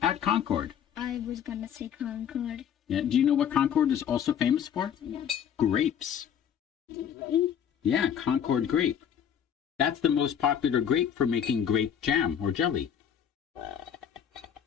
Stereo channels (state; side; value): quieter; right; 8.7 dB